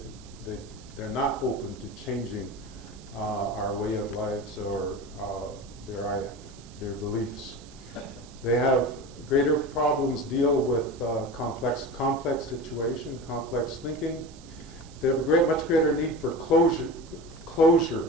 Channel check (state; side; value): noise; right; hiss, 23 dB below the sound